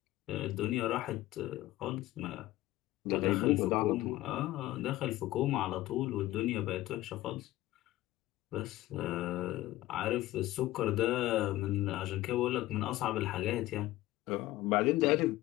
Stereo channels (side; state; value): right; quieter; 16.5 dB